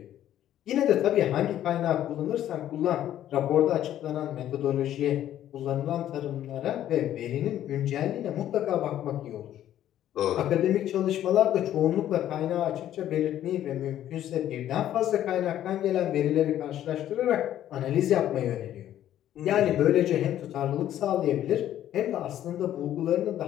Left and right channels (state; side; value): quieter; right; 11.8 dB